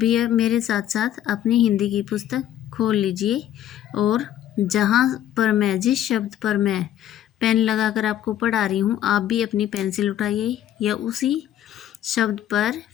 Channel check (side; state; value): right; quieter; 11.5 dB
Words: अब मेरे साथ साथ अपनी हिंदी की पुस्तक खोल लीजिए और जहाँ पर मैं जिस शब्द पर मैं पेन लगाकर आपको पढ़ा रही हूँ, आप भी अपनी पेंसिल उठाइए या उसी शब्द पर